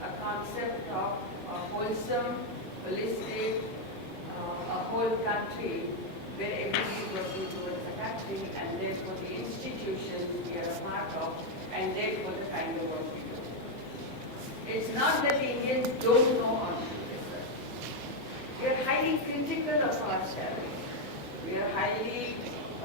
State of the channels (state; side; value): normal; both; correlation 0.02